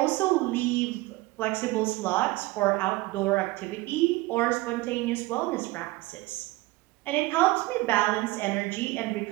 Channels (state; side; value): quieter; left; 20.7 dB